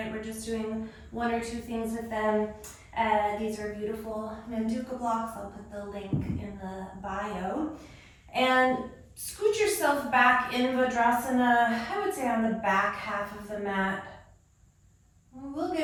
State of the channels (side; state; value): both; identical; correlation 1.00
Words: We're just doing 1 or 2 things with them. These are beautiful Manduka blocks. I'll put the link in the bio. And scoot yourself back in Vajrasana, I would say on the back half of the mat. We'll